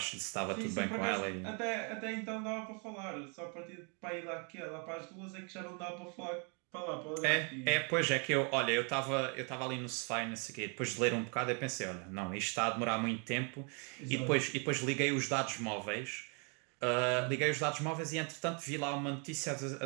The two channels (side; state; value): left; quieter; 36.6 dB